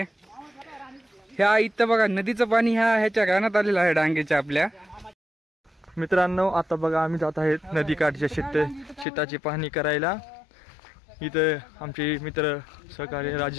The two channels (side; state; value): right; drops out; at 9.1 s